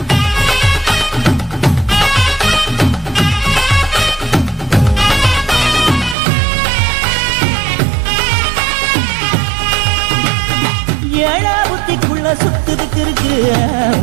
ஏழா புத்திக்குள்ள சுத்துதுக்கு இருக்கு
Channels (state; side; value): drops out; left; at 6.2 s